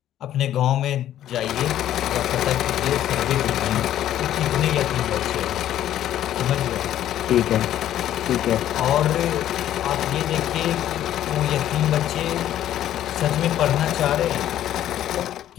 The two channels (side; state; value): right; quieter; 12.0 dB